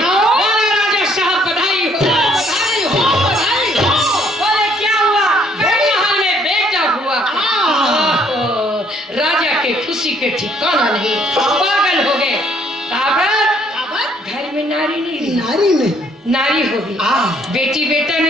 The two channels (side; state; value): both; normal; correlation 0.64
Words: साहब बधाई हो, बधाई हो, बधाई हो। बोले क्या हुआ? महल में बेटा हुआ। राजा के खुशी के ठिकाना नहीं, पागल हो गए। घर में नारी नहीं रही, नारी नहीं, नारी होगी। बेटी बेटा